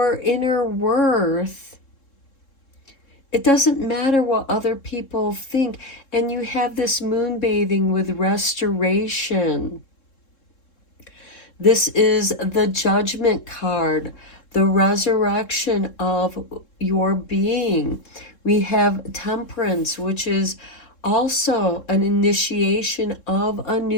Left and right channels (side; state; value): right; late; 3.7 ms